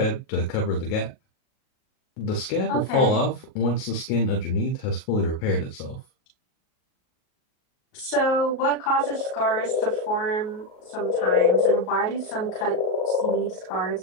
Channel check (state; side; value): late; right; 38 ms